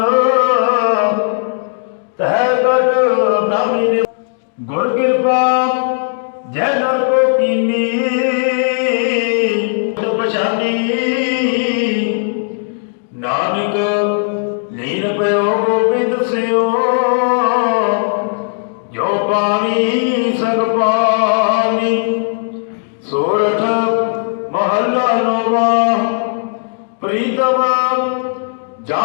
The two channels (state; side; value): silent; right; digital silence